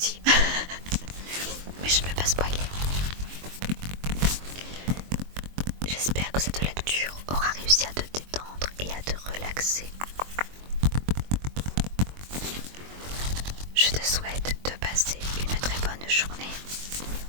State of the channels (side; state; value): left; late; 22 ms